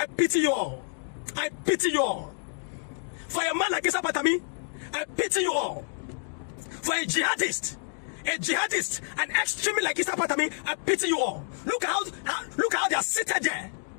pity you all. I pity you all. For a man like Isa Pantami, I pity you all. For a jihadist, an extremist like Issa Pantami, I pity you all. Look how they are seated there.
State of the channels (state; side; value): silent; right; digital silence